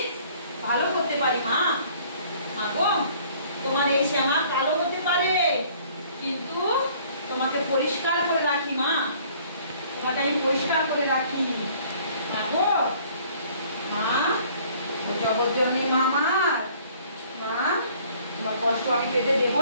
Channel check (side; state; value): both; inverted; correlation -0.56